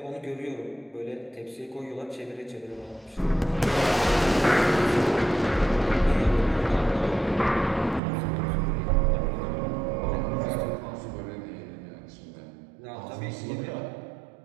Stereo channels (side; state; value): left; drops out; at 8.0 s